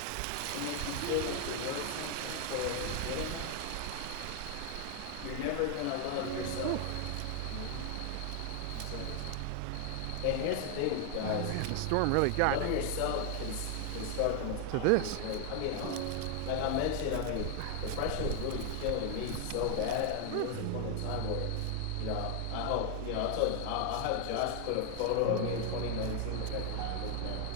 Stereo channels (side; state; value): both; different; correlation 0.01